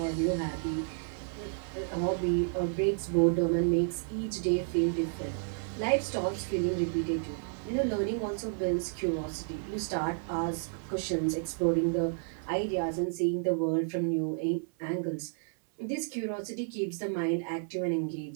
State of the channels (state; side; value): silent; left; 57 dB below the other